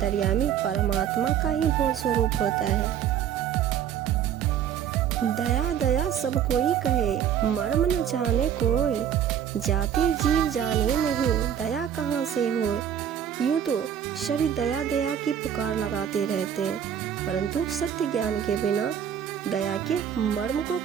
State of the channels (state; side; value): quieter; left; 9.3 dB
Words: परमात्मा का ही बोध स्वरूप होता है। दया दया सब कोई कहे, मर्म न जाने कोई, जाति जीव जाने नहीं, दया कहाँ से हो। यूँ तो सभी दया दया की पुकार लगाते रहते हैं, परंतु सत्य ज्ञान के बिना दया के मर्म को